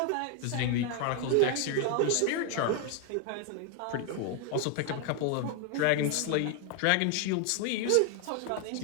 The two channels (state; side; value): different; both; correlation 0.01